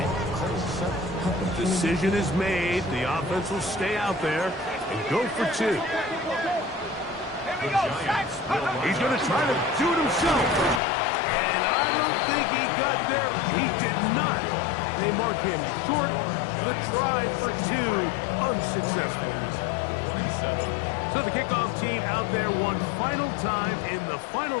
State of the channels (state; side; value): drops out; right; at 10.8 s